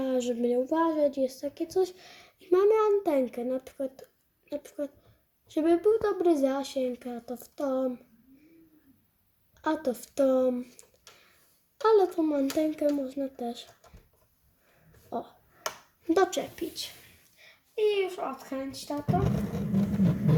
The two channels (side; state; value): both; identical; correlation 1.00